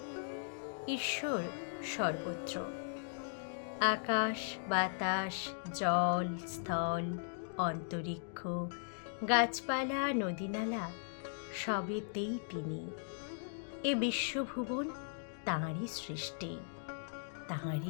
ঈশ্বর সর্বত্র, আকাশ বাতাস জল স্থল অন্তরিক্ষ গাছপালা নদীনালা সবেতেই তিনি। এ বিশ্বভুবন তাঁরই সৃষ্টি, তাঁরই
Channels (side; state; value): right; silent; digital silence